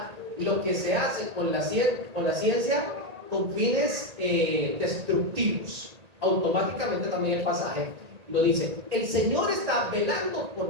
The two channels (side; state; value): left; late; 1.8 ms